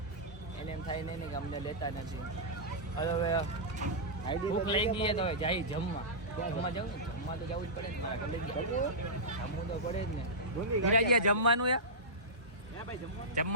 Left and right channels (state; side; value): normal; both; correlation -0.14